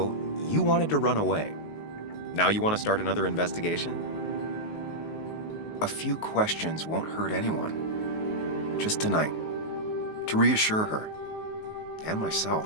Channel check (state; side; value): late; right; 19 ms